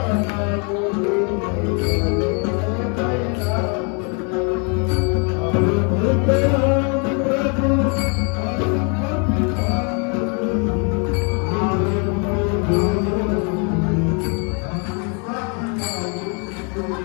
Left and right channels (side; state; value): right; quieter; 36.1 dB